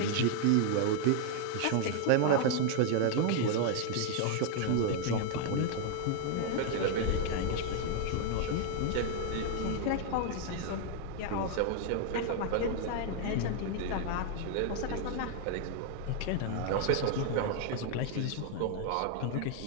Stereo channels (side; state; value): both; different; correlation 0.00